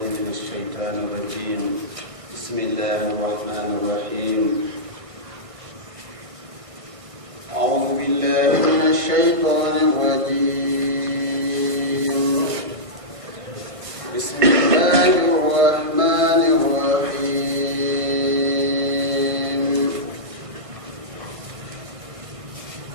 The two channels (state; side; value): late; left; 1.5 ms